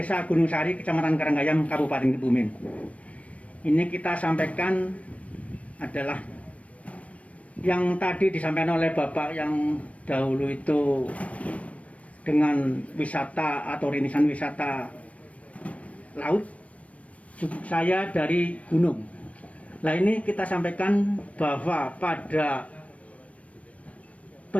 Gunung Sari, Kecamatan Karanggayam, Kabupaten Kebumen. Ini kita sampaikan adalah yang tadi disampaikan oleh Bapak yang dahulu itu dengan wisata atau rintisan wisata laut. Saya dari gunung. Nah, ini kita sampaikan bahwa pada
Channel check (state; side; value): late; right; 0.065 ms